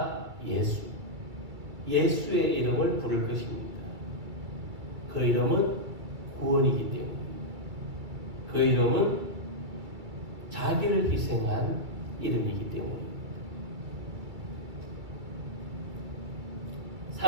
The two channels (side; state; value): left; late; 2.4 ms